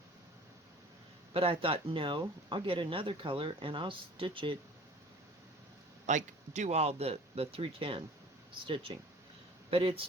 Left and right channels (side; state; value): both; normal; correlation 0.46